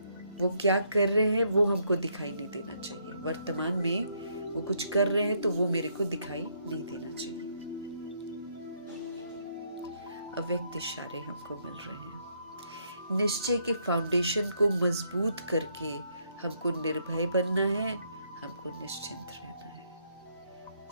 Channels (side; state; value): both; inverted; correlation -0.72